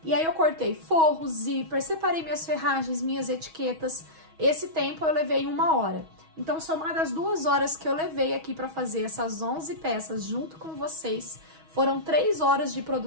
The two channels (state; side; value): late; left; 6.3 ms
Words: E aí eu cortei forro, zíper, separei minhas ferragens, minhas etiquetas. Esse tempo eu levei 1 hora. Então, somado as 2 horas que eu levei aqui para fazer essas 11 peças junto com vocês, foram 3 horas de